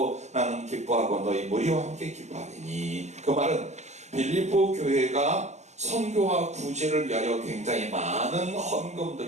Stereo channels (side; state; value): left; late; 0.33 ms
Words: 나는 기뻐하고 너희 무리와 함께 기뻐하리니. 그 말은 빌립보 교회가 선교와 구제를 위하여 굉장히 많은